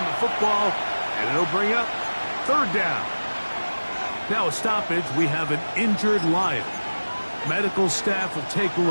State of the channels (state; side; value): inverted; both; correlation -1.00